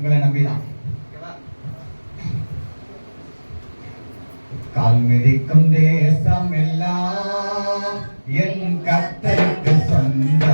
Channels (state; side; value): inverted; both; correlation -1.00